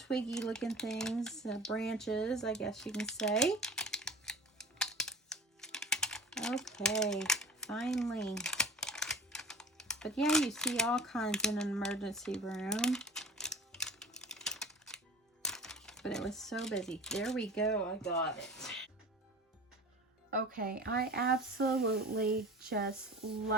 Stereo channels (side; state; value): both; normal; correlation 0.39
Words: looking things, branches, I guess you can say. Okay, finally. But yeah, you see all kinds in an emergency room. But it was so busy. There we go, I got it. Okay, I absolutely just